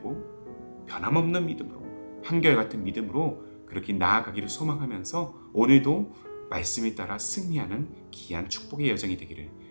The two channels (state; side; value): inverted; both; correlation -1.00